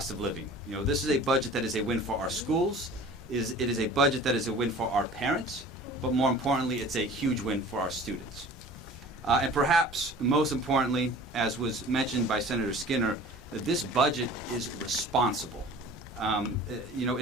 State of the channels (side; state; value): both; normal; correlation 0.44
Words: of living. This is a budget that is a win for our schools. It is a budget that is a win for our parents, but more importantly, it's a huge win for our students. And perhaps most importantly, as was mentioned by Senator Skinner, this budget is responsible.